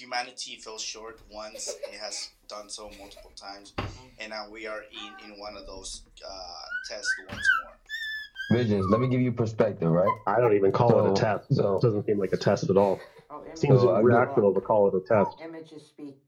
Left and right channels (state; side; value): identical; both; correlation 1.00